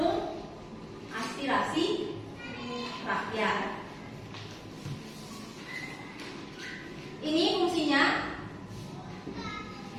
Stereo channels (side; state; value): both; identical; correlation 1.00